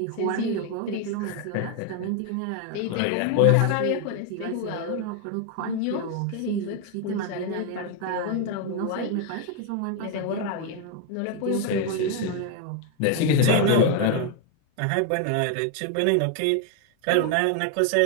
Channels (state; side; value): different; both; correlation 0.01